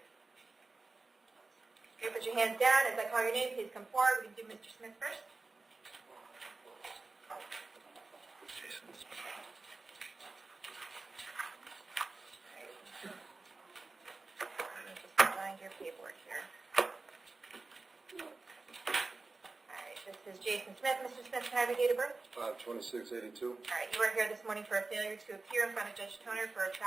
Okay, put your hands down. As I call your name, please come forward. We can do Mr. Smith first. Your paperwork here. All right, this is Jason Smith. Mr. Smith, can I have your date of birth? 5/26/82. All right, you are here this morning for a failure to appear in front of Judge Toner for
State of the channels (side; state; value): left; quieter; 3.6 dB